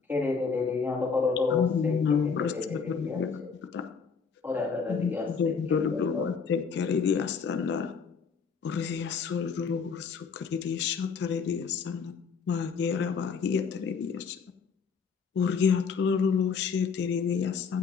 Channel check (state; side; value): quieter; right; 5.7 dB